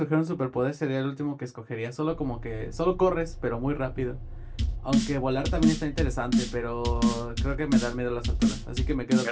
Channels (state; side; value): identical; both; correlation 1.00